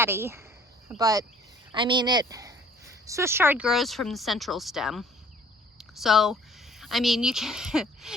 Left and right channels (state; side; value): normal; both; correlation 0.55